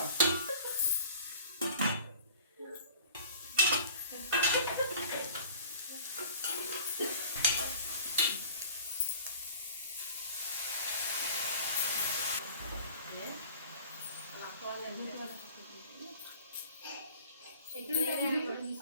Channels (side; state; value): both; inverted; correlation -0.45